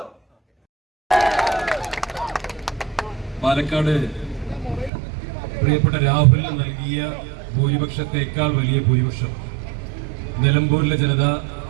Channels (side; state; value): left; drops out; at 4.9 s